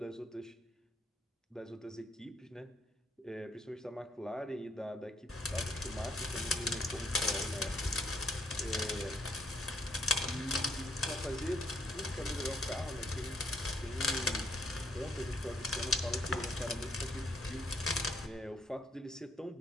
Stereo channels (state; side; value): normal; both; correlation 0.69